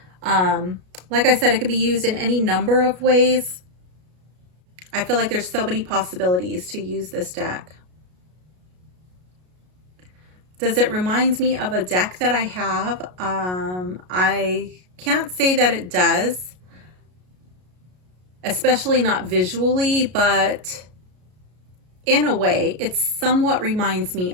Like I said, it could be used in any number of ways. I feel like there's so many possibilities to use this deck. Does it remind me of a deck that I have? I can't say that it does, especially not visually, but in a way, it somewhat reminds me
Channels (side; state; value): left; late; 33 ms